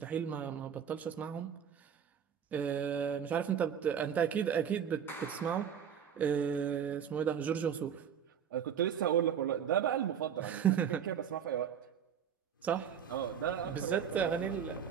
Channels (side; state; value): left; quieter; 8.1 dB